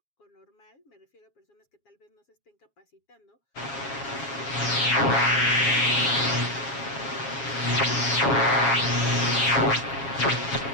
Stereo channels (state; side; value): late; right; 7.3 ms